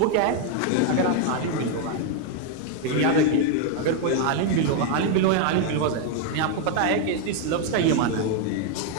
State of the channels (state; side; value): different; both; correlation 0.01